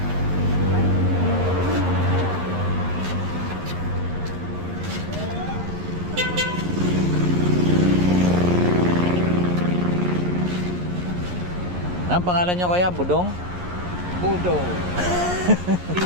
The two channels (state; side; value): late; left; 11 ms